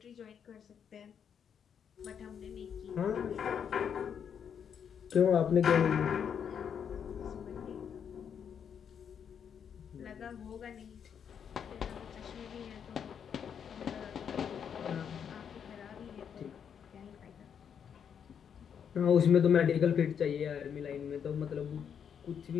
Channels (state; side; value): quieter; right; 7.8 dB